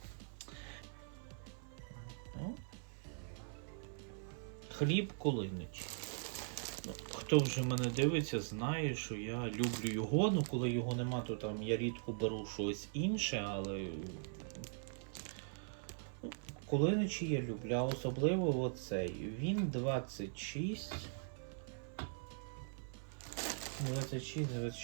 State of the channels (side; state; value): left; silent; 50 dB below the other